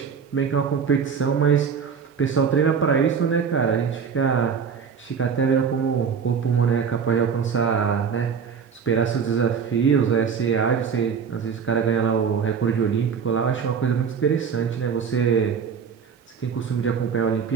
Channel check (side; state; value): left; quieter; 6.5 dB